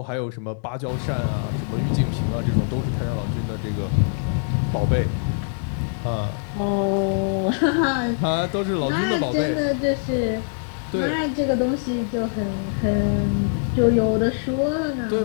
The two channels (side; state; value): right; silent; digital silence